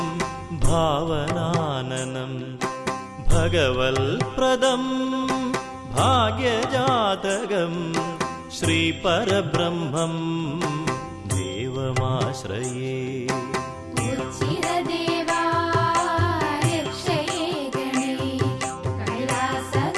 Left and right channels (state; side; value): identical; both; correlation 1.00